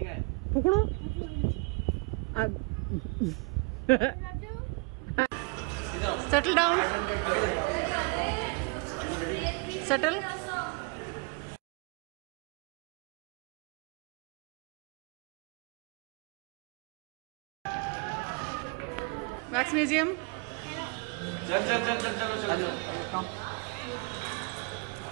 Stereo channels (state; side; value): quieter; left; 33.0 dB